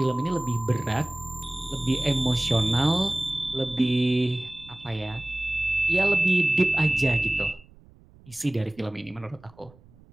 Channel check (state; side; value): noise; right; rumble, 26 dB below the sound